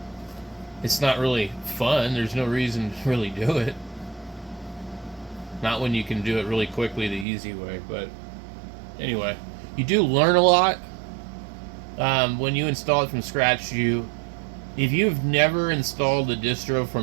it's not really fun. There's no reason to really do it. Not when you can do it really quickly the easy way. But anyway, you do learn a lot when you install it from scratch. If you've never installed a distro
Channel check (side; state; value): left; drops out; at 7.2 s